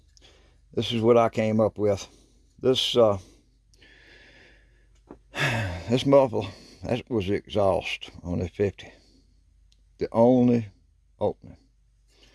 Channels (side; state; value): both; identical; correlation 1.00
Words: this is what I came up with. This this muffler, that was the exhaust on the 50, the only opening.